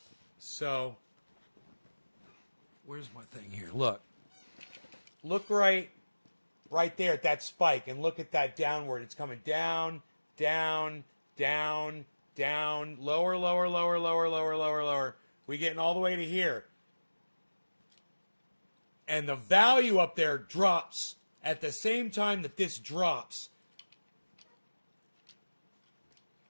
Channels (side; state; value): both; inverted; correlation -1.00